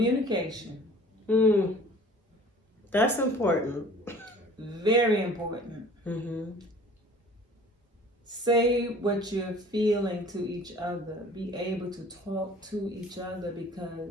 That's important. Very important. Say what you're feeling to each other. Be able to talk to each other,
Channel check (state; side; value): normal; both; correlation 0.48